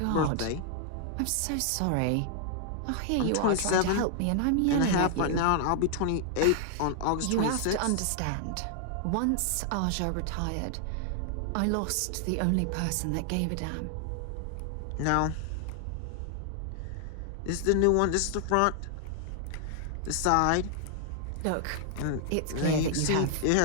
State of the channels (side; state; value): both; different; correlation 0.00